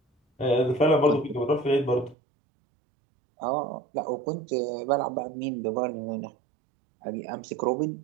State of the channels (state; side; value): drops out; left; at 2.1 s